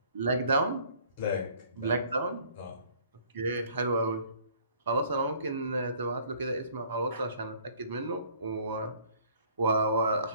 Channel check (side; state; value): both; inverted; correlation -0.56